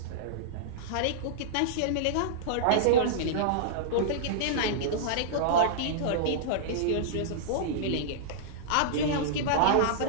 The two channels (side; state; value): both; different; correlation -0.02